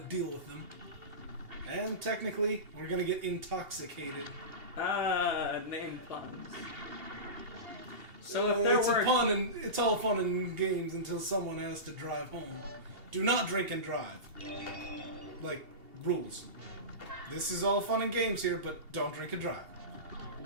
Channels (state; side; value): late; left; 2.8 ms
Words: with them. And technically, we're gonna get intoxicated. Name puns. So if there it's were... a pun, and it's all fun and games until someone has to drive home. Do not drink and drive. Like, rules. This is all fun and games here, but don't drink and drive.